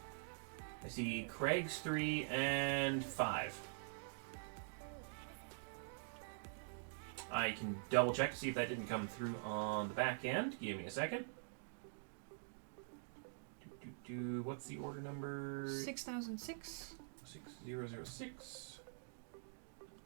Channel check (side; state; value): left; silent; digital silence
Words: see Craig's 3 and 5. I can double check to see if that didn't come through on the back end. Give me a second. What's the order number? 6006. 6006.